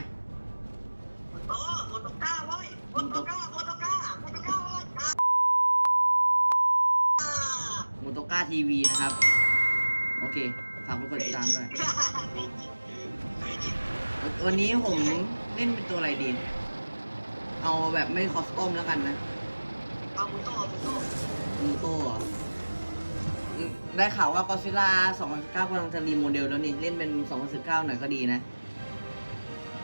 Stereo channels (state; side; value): inverted; both; correlation -1.00